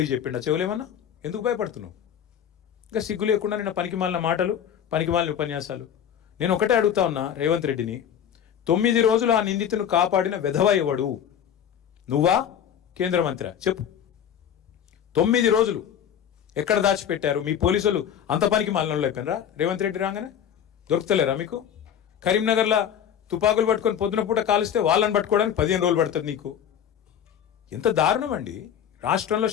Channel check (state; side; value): quieter; right; 9.1 dB